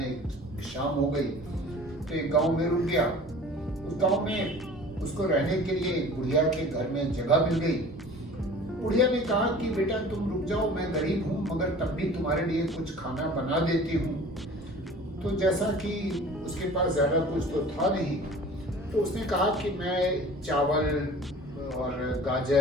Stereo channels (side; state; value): both; normal; correlation 0.44